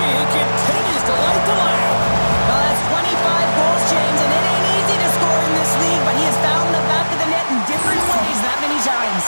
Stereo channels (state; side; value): inverted; both; correlation -1.00